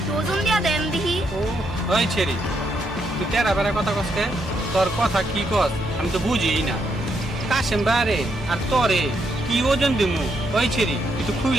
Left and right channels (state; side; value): normal; both; correlation 0.77